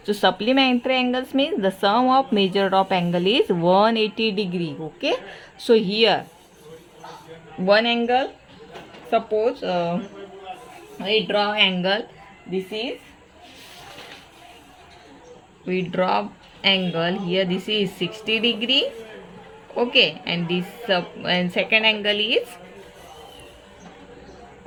so supplementary angles means the sum of measured of angle is 180 degree. Okay, so here one angle, suppose we draw angle, this is, we draw angle here, this is 60 degree. Okay, and this and second angle is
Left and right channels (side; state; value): both; identical; correlation 1.00